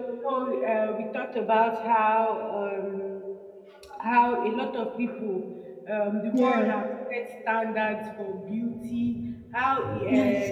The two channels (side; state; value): both; identical; correlation 1.00